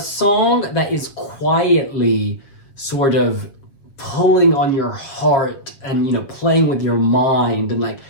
that is quietly sort of pulling on your heart and, you know, playing with your mind. And, like,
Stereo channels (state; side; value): late; right; 7.4 ms